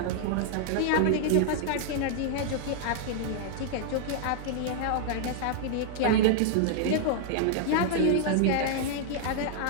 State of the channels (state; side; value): different; both; correlation -0.01